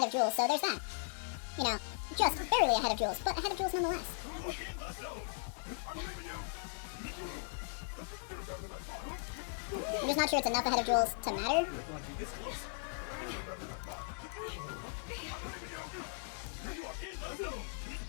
of Jules, so there's that. You know, just barely ahead of Jules, but ahead of Jules nonetheless. I'm just not sure it's enough ahead of Jules to matter.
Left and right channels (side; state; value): right; silent; 53 dB below the other